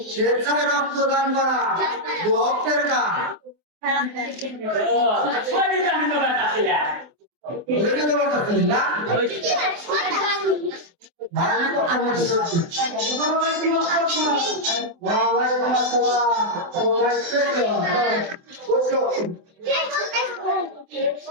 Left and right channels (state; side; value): late; left; 24 ms